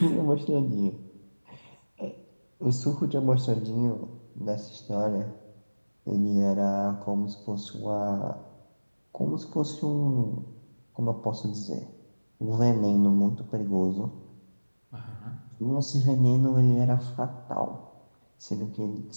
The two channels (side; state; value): both; inverted; correlation -1.00